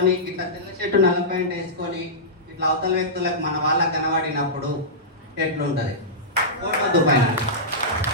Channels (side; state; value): both; normal; correlation -0.15